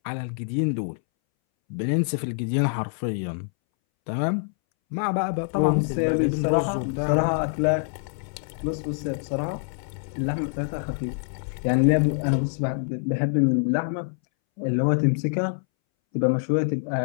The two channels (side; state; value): right; silent; 62 dB below the other